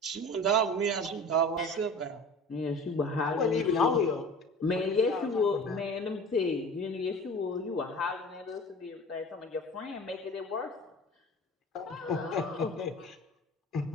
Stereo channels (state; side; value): normal; both; correlation 0.39